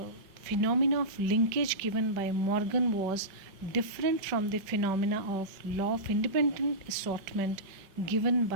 phenomena of linkage given by Morgan was different from the phenomena of law of independent assortment given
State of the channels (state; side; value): late; left; 4.9 ms